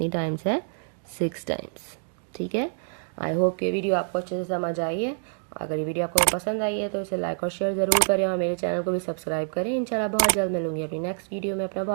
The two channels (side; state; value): left; silent; digital silence